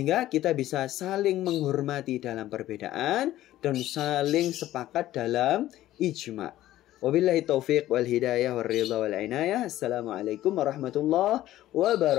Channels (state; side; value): quieter; right; 14.3 dB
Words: kita bisa saling menghormati dalam perbedaan dan saling sepakat dalam ijma. Wabillahi taufiq wal hidayah wal ridha wal inayah. Assalamualaikum warahmatullahi